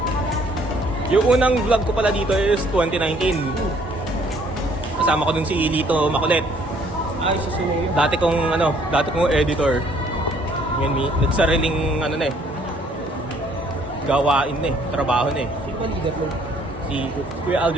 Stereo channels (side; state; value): both; normal; correlation 0.62